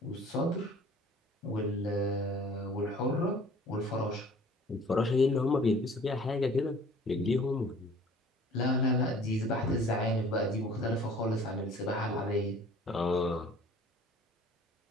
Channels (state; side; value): normal; both; correlation 0.50